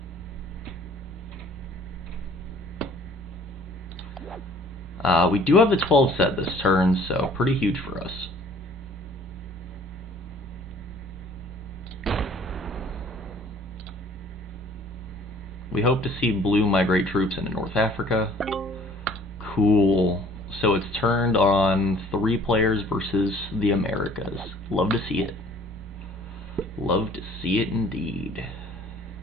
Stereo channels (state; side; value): normal; both; correlation 0.54